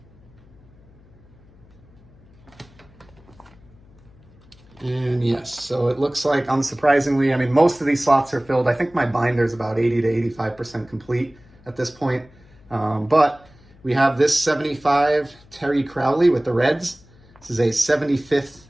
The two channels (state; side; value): noise; left; hum, 26 dB below the sound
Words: And yes, so it looks like, unsurprisingly, I mean, most of these slots are filled. I think my binder is about 80 to 85% complete at this point. But we have this 75 Terry Crowley with the Reds. This is a 75th